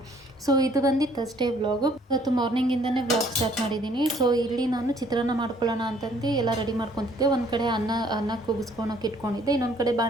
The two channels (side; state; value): both; normal; correlation 0.61